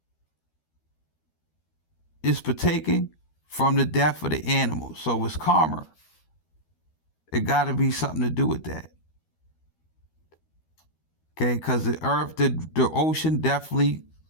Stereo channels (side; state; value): right; late; 13 ms